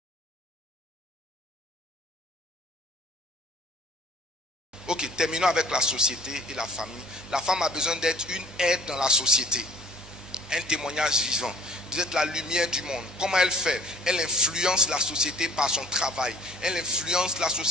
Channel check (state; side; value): normal; both; correlation 0.51